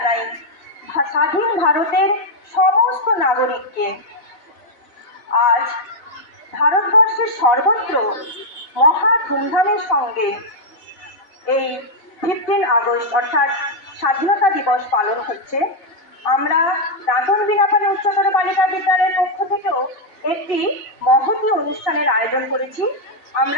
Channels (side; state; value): right; late; 4.0 ms